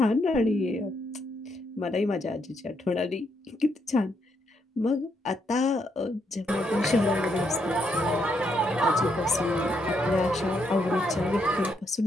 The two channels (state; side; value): normal; both; correlation 0.77